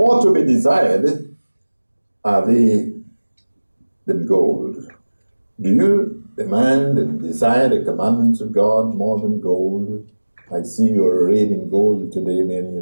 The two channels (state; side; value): inverted; both; correlation -1.00